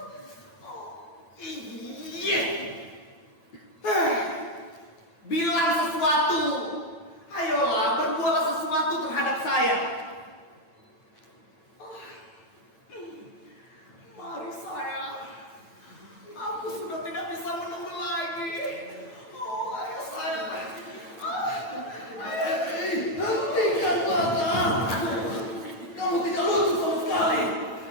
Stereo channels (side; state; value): right; late; 8.9 ms